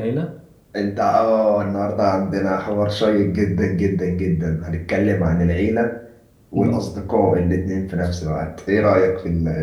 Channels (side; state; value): both; identical; correlation 1.00